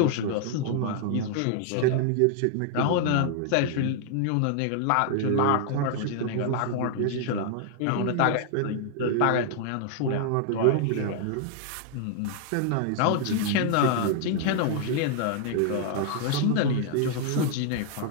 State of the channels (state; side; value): different; both; correlation 0.00